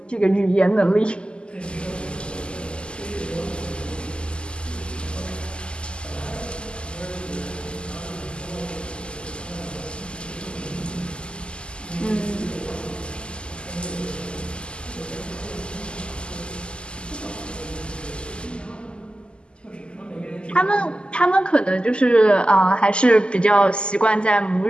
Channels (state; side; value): late; right; 0.050 ms